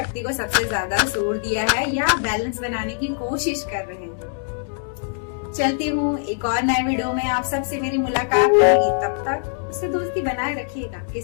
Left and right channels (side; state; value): right; silent; digital silence